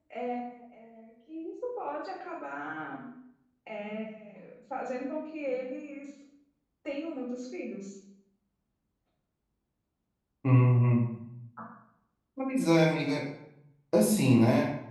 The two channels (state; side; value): identical; both; correlation 1.00